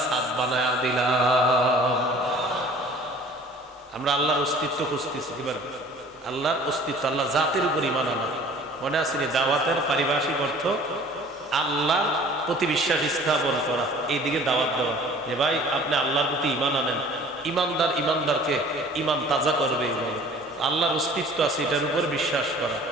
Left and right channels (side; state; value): both; normal; correlation 0.49